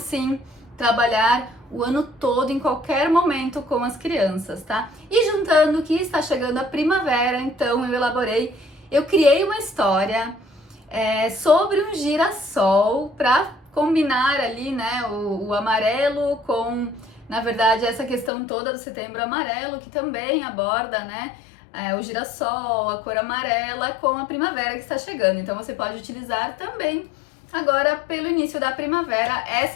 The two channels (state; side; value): drops out; right; at 18.3 s